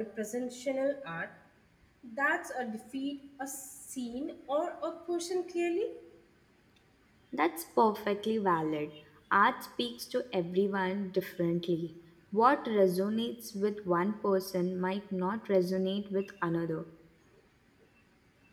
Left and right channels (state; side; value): identical; both; correlation 1.00